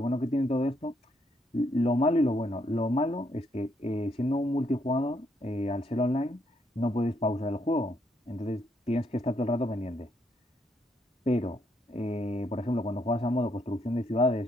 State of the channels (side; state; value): both; normal; correlation 0.74